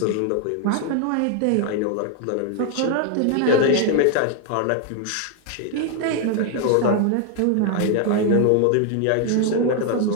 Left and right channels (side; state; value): both; different; correlation 0.01